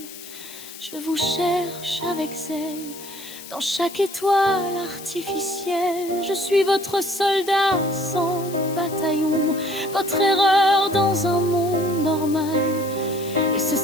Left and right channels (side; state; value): left; noise; hiss, 14 dB below the sound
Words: Je vous cherche avec zèle dans chaque étoile artificielle. Je suis votre soldat sans bataillon, votre erreur dans un monde normal. Et ce